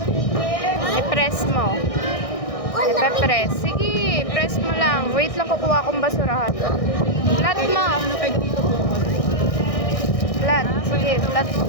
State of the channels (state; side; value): late; right; 1.6 ms